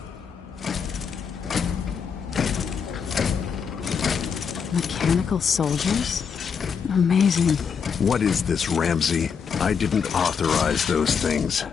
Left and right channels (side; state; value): right; quieter; 6.5 dB